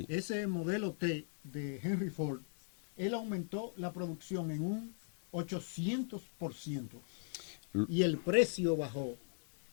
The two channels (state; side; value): silent; right; digital silence